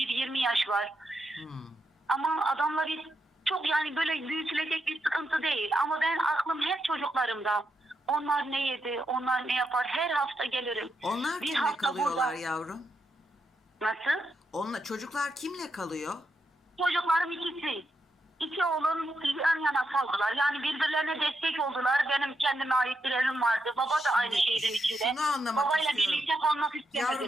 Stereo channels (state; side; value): normal; both; correlation 0.83